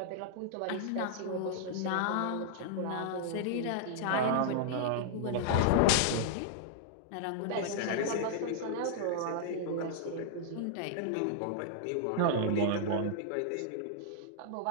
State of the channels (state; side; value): different; both; correlation -0.01